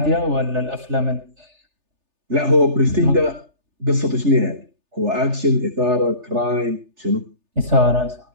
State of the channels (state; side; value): late; left; 3.3 ms